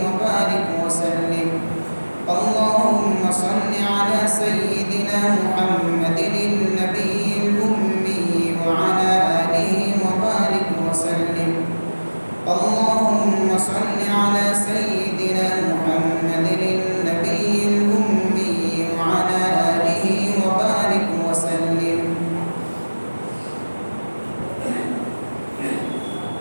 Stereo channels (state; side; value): inverted; both; correlation -1.00